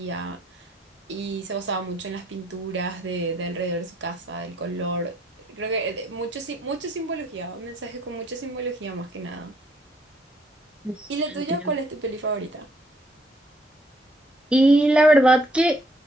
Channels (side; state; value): both; normal; correlation 0.66